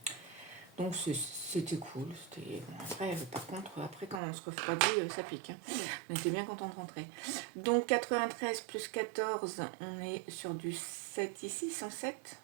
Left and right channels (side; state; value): left; drops out; at 4.2 s